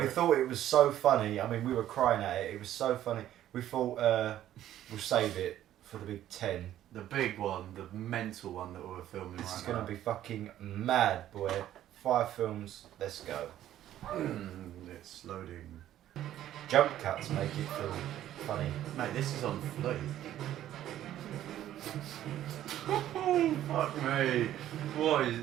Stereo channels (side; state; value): left; quieter; 12.3 dB